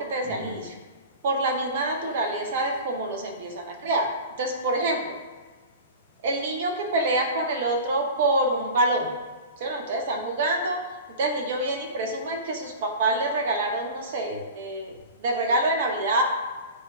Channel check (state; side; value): inverted; both; correlation -0.34